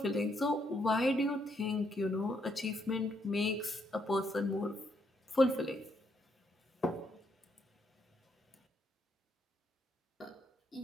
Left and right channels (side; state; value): both; normal; correlation 0.75